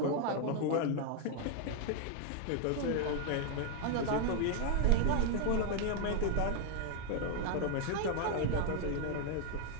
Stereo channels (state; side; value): different; both; correlation 0.00